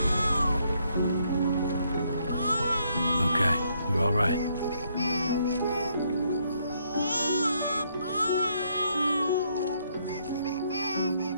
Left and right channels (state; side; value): inverted; both; correlation -0.72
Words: Okay, you're all right.